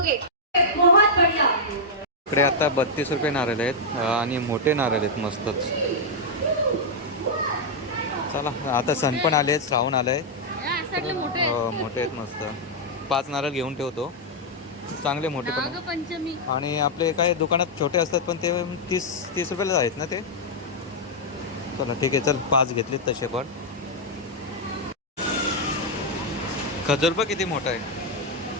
बहुत बढ़िया. इकडे आता 32 रुपये नारळ आहेत आणि मोठे नारळ आहेत मस्तच. चला, आता सण पण आले, श्रावण आलंय. मोठे आहेत मस्त. 5 नारळ घेऊन ठेवतो. चांगले मोठे पण पंचमी. आणि आपले काय दुकानात छोटे असतात पण ते 30 रुपयाला आहेत ना ते. चला ठीक आहे, चल 5 घेतलेत तसे पण. खजूर पण किती मोठा आहे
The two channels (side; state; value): both; normal; correlation -0.04